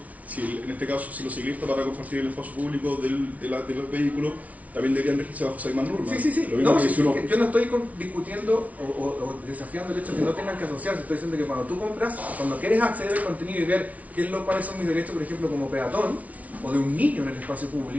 en este caso, si los ciclistas para compartir el espacio público de los vehículos, también deberían regirse bajo esas mismas normas. Sí. Yo no estoy discutiendo o desafiando el hecho de que no tengan que asociarse. Estoy diciendo que cuando tú compras, cuando quieres acceder al contenido y ver cuáles son mis derechos, por ejemplo, como peatón, o de un niño en el espacio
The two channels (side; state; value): left; late; 0.069 ms